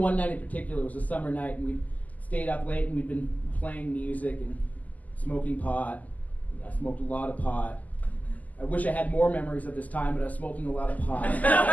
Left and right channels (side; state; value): right; late; 0.078 ms